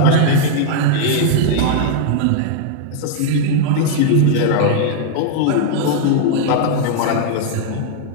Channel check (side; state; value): both; different; correlation 0.00